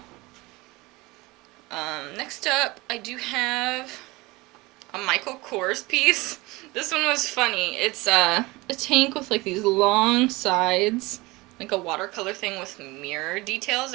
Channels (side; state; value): left; quieter; 22.3 dB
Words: Next up, I do have a Michael Kors piece. This one was funny. It's a tank with like these long sides, like a watercolor thing with mirror details